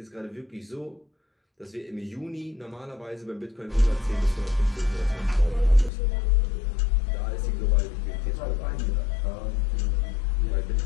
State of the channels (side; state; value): right; drops out; at 5.9 s